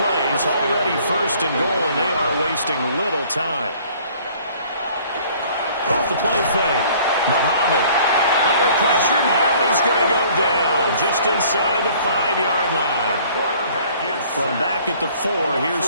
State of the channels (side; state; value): both; inverted; correlation -0.55